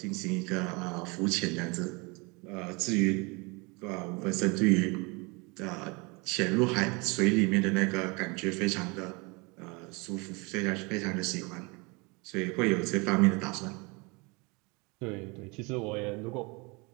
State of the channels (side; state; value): left; quieter; 28.3 dB